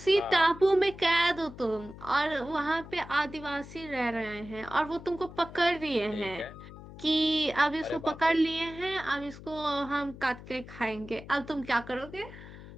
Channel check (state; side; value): noise; left; hum, 15 dB below the sound